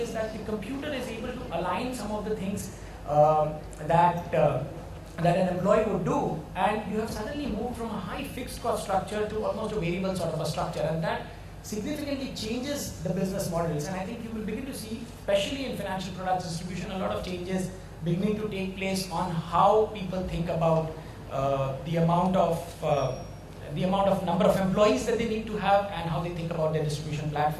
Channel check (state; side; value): identical; both; correlation 1.00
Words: that the computer is able to align some of the things that an employee would do, and you have suddenly moved from a high fixed cost structure to almost a variable sort of a structure, and that significantly changes the business models. And I think you will begin to see, especially in financial products distribution, a lot of changes beginning to take place on how people think about the amount of number of employees that they need to have and how they think about their distribution